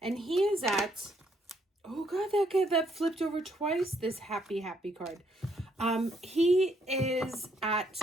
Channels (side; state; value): both; normal; correlation 0.71